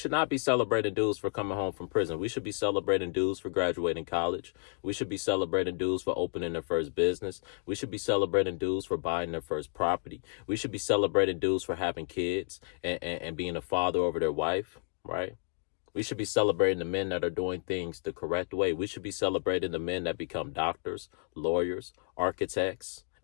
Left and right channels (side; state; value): right; silent; 57 dB below the other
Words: not be celebrating dudes for coming home from prison. We should be celebrating dudes for graduating college. We should be celebrating dudes for opening their first business. We should be celebrating dudes for buying their first property. We should be celebrating dudes for having kids and being a father over their wife, right? We should be celebrating the men that are doing things the correct way. We should be celebrating the men that become doctors, lawyers, architects,